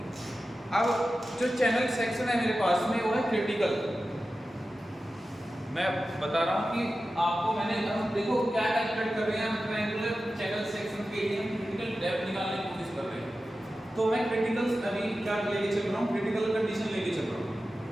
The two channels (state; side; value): normal; both; correlation 0.93